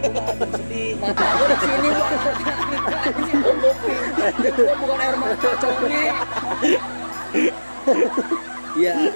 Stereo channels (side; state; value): both; inverted; correlation -1.00